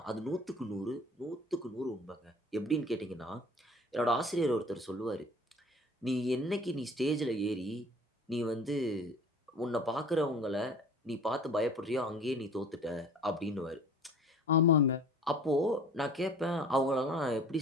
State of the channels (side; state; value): both; normal; correlation 0.46